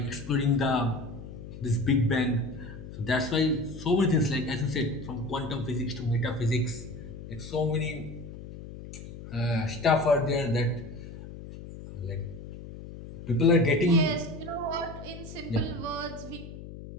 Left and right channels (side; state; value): left; noise; hum, 13 dB below the sound